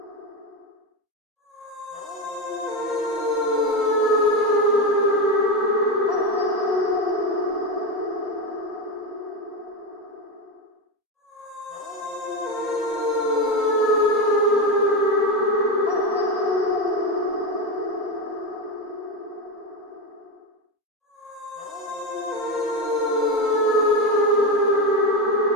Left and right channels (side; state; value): both; normal; correlation 0.15